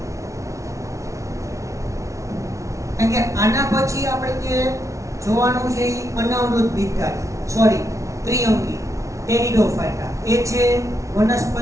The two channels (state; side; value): late; left; 0.15 ms